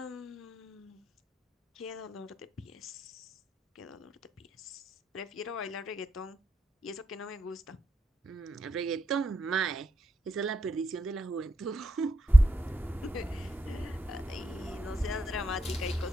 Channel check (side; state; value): both; normal; correlation 0.83